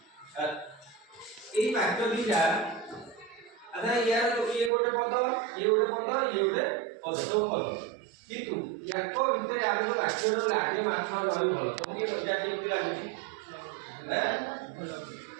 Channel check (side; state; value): left; drops out; at 4.7 s